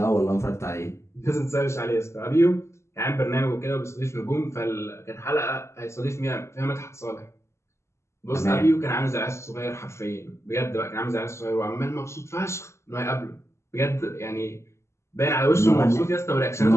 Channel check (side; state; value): right; late; 0.13 ms